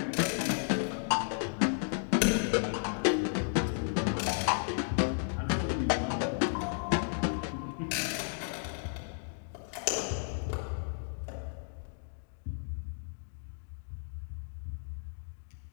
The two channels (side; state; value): right; silent; digital silence